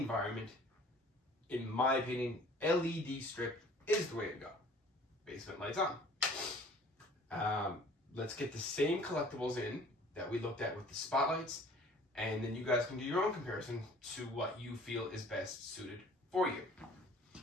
in my opinion, LED strip is the way to go. Basement lights on. Let's get the same collectibles in that we looked at with the spotlights, and then you guys can do your own comparison to what you feel is best suited for you.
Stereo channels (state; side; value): normal; both; correlation 0.51